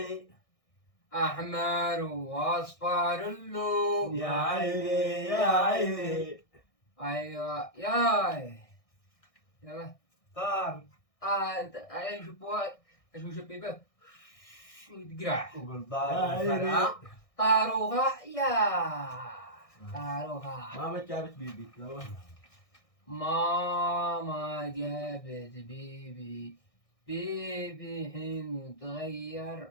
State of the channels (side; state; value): right; late; 1.6 ms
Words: احمر واصفر اللون. يا عيني ايوه ياي يلا طار انا شو شبيبه تقرع وقول يا طار عيني. الفرع. طاروخة يا طاروخة. ماما جابت بيبي. يلا. ماما جابت بيبي حين